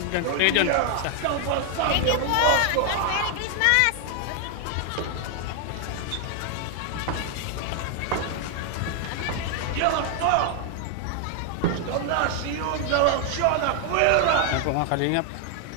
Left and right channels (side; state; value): both; different; correlation 0.00